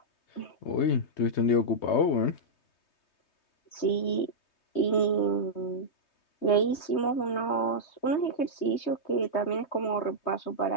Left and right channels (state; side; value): late; right; 3.2 ms